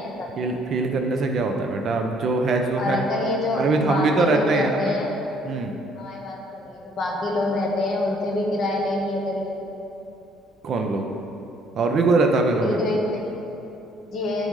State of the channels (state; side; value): normal; both; correlation 0.63